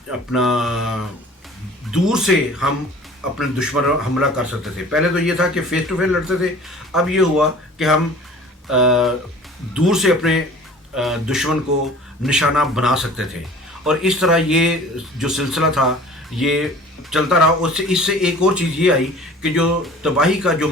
اپنا دور سے ہم اپنے دشمن حملہ کر سکتے تھے۔ پہلے تو یہ تھا کہ فیس ٹو فیس لڑتے تھے، اب یہ ہوا کہ ہم دور سے اپنے دشمن کو نشانہ بنا سکتے تھے۔ اور اس طرح یہ جو سلسلہ تھا یہ چلتا رہا۔ اس سے ایک اور چیز یہ آئی کہ جو تباہی کا جو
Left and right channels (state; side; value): normal; both; correlation 0.46